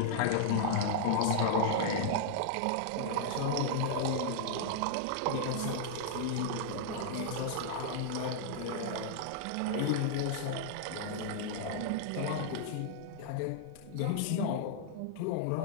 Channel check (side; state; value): both; different; correlation -0.01